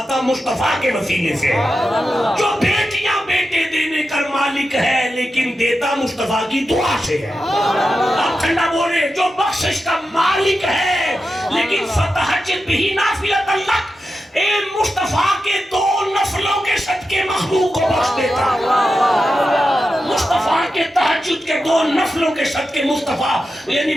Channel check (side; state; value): both; normal; correlation 0.90